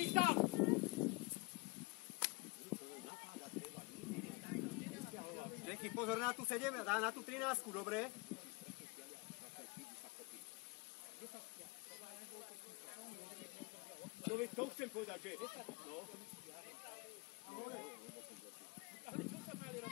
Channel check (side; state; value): right; quieter; 27.3 dB